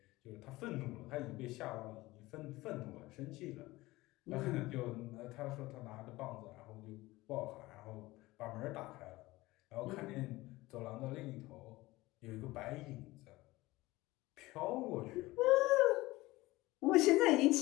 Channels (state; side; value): quieter; right; 19.5 dB